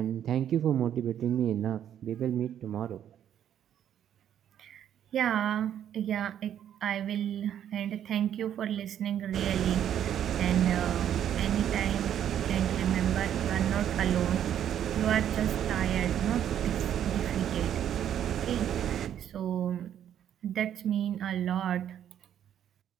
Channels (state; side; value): quieter; left; 10.1 dB